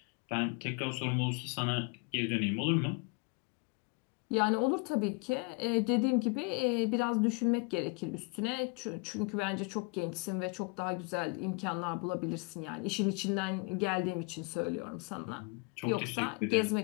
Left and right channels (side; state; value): right; quieter; 29.9 dB